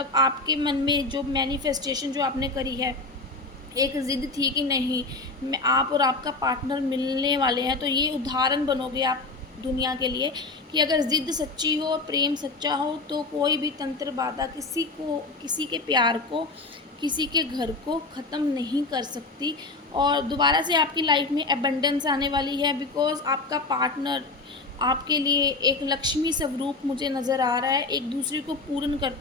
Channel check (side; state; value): right; quieter; 3.5 dB